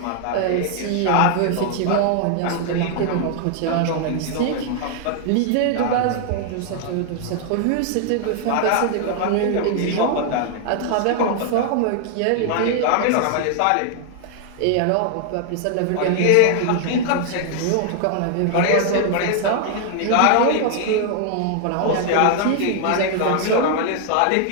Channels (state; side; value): different; both; correlation 0.00